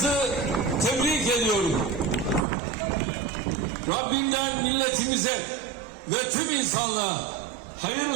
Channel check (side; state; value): left; drops out; at 2.5 s